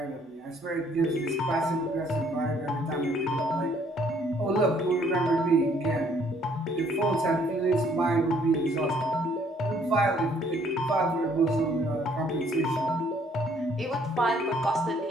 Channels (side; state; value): both; normal; correlation 0.63